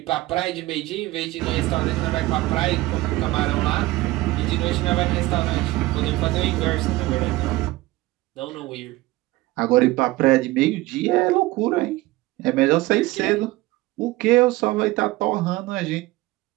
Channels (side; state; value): left; quieter; 18.8 dB